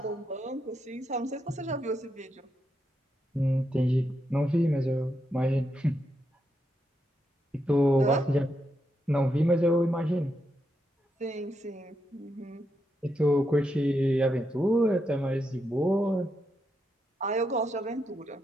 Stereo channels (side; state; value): both; normal; correlation 0.83